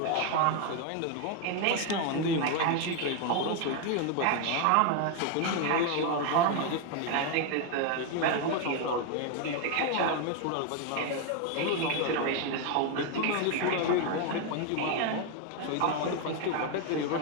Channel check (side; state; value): both; different; correlation 0.01